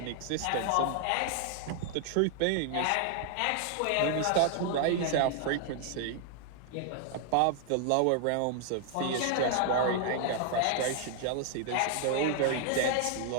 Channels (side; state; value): both; different; correlation 0.00